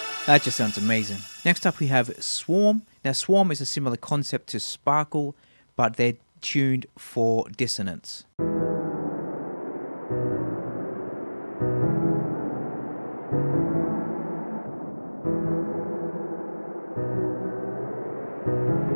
That just sounds amazing. Next up we have Swarm. Now Swarm is a similar concept to Sparkle, but they're tuned for dissonance.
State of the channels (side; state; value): both; inverted; correlation -1.00